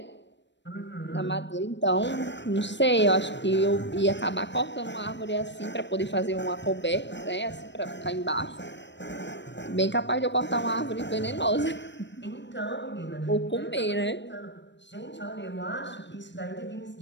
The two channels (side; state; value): right; late; 0.53 ms